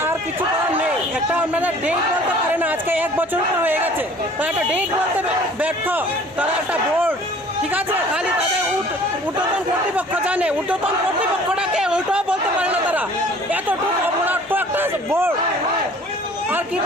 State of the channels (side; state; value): both; normal; correlation 0.51